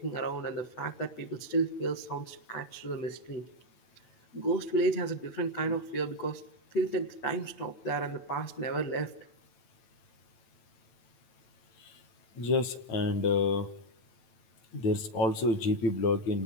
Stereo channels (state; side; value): late; right; 9.0 ms